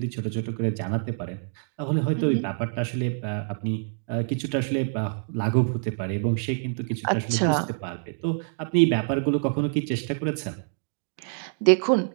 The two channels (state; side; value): silent; left; digital silence